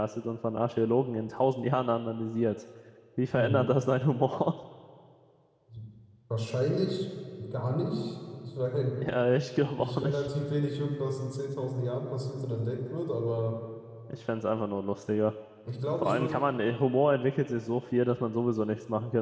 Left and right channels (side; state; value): both; identical; correlation 1.00